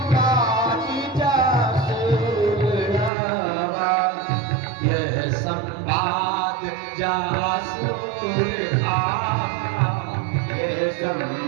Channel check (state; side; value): drops out; left; at 3.1 s